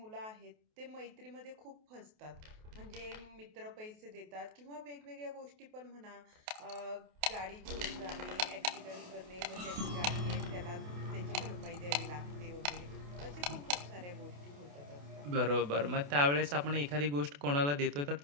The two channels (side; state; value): left; late; 28 ms